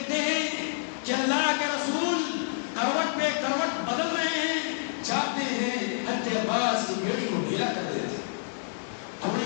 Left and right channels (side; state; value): right; silent; digital silence